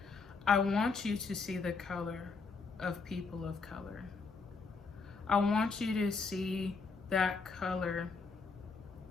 I want you to see the color of people of color. I want you to see that color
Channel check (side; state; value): right; quieter; 4.5 dB